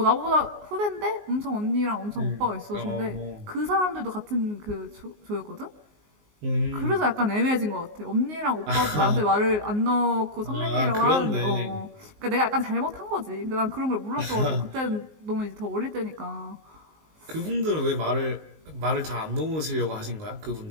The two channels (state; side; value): late; left; 19 ms